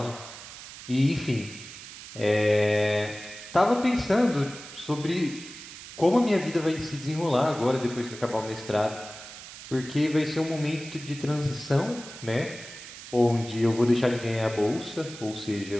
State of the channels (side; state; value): right; noise; hiss, 14 dB below the sound